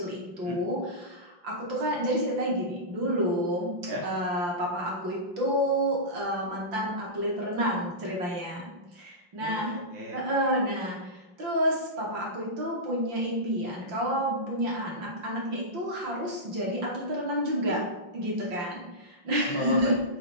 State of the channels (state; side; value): late; left; 5.6 ms